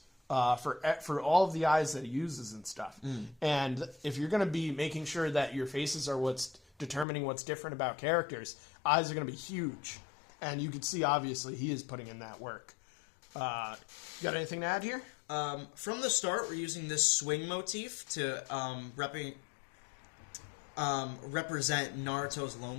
for all of the eyes that he uses and stuff. And if you're going to be making sure that your faces are what's determining what's different about characters, eyes are going to be huge. And you can see, obviously, he is putting in that work. Got anything to add here? From the start, we're using this swing motif to represent Naruto's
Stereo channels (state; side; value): drops out; right; at 7.1 s